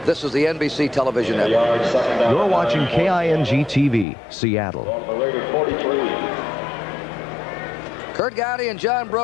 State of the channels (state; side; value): drops out; right; at 4.0 s